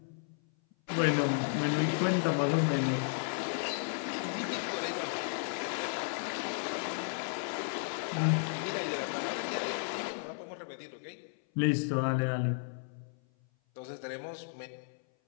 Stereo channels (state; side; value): silent; right; 55 dB below the other